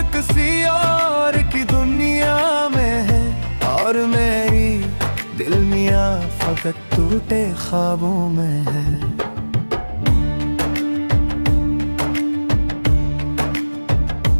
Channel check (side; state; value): both; inverted; correlation -1.00